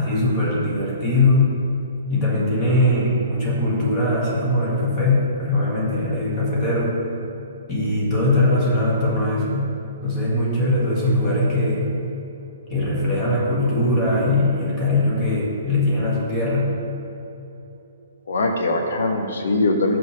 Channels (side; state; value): both; inverted; correlation -0.46